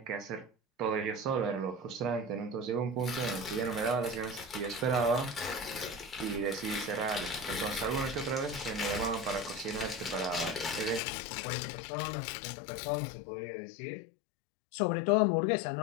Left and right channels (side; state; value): right; drops out; at 11.0 s